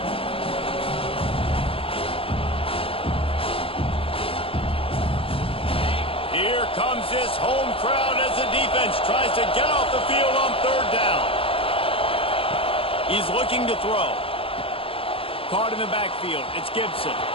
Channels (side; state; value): right; late; 0.27 ms